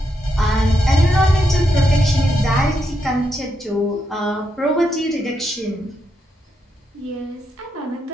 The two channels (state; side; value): normal; both; correlation 0.81